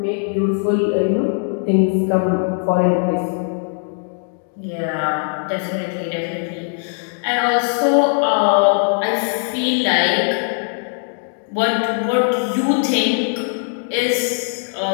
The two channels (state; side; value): silent; right; 58 dB below the other